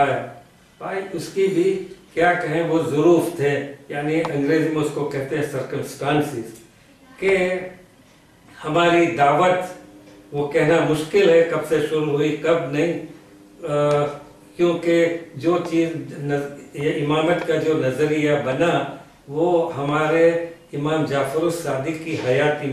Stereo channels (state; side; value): identical; both; correlation 1.00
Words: بھائی اس کی بھی کیا کہیں وہ ظروف تھے, یعنی انگریزی میں اس کو کہتے ہیں سرکمسٹانسز, کہ ہماری دعوت وہ کہنا مشکل ہے کب سے شروع ہوئی کب نہیں, کیونکہ جو چیز یہ امامت کا جو نظریہ بنا وہ ہمارے امام جعفر الصادق کی حیاتی